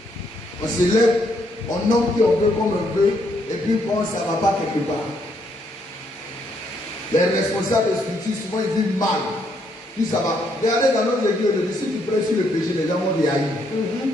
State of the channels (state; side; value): normal; both; correlation 0.73